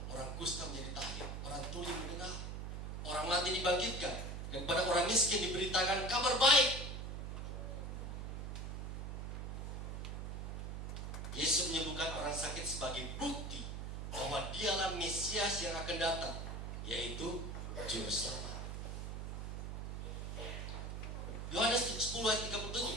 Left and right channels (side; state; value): right; noise; hum, 5 dB below the sound